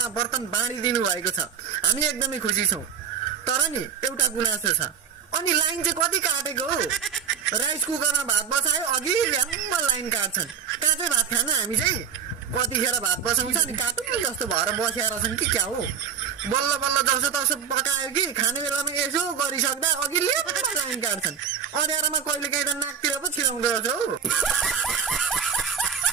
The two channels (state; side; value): quieter; left; 7.5 dB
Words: बर्तन बाँडिदिनु भएको छ। हामी एकदमै खुसी छौं। तर नि एउटा गुनासो छ। अनि लाइन चाहिँ कति काटेको हो? राइस कुकरमा भात बसायो अघि ल्याम्म लाइन काट्छन्। कहाँ चाहिँ भात खान हामी चाहिँ कतिखेर भात बसाउँछ अनि काटुन जस्तो भएर बसेर छन् कि क्या हो? बल्ल बल्ल जसो तसो पकायो कि खाने बेलामा यसो गरिसक्दा अघि ल्याम्म लाइन काट्छन्। अँध्यारोमा कहिले काहीँ त नाकतिर पो छिराउँदो रहेछ हौ।